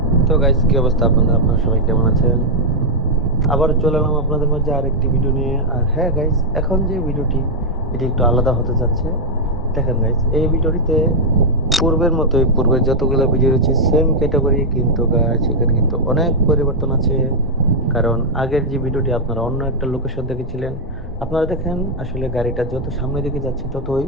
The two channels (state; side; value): normal; both; correlation -0.02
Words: তো গাইস, কি অবস্থা আপনাদের? আপনারা সবাই কেমন আছেন? আবার চলে এলাম আপনাদের মাঝে আরেকটি ভিডিও নিয়ে। আর হ্যাঁ গাইস, এখন যে ভিডিওটি এটি একটু আলাদা হতে যাচ্ছে। দেখেন গাইস, এই ভিডিওটিতে পূর্বের মতোই, পূর্বের যতগুলো ভিডিও রয়েছে সেম ক্যাটাগরি, কিন্তু গাইস এখানে কিন্তু অনেক পরিবর্তন আছে। কারণ আগের যে ভিডিওটি আপনারা অন্য একটা লোকেশন দেখেছিলেন, আপনারা দেখেন আসলে গাড়িটা যত সামনের দিকে যাচ্ছে ততই